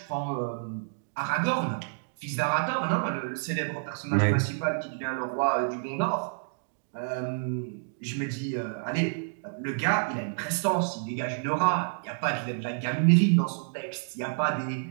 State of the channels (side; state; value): left; silent; digital silence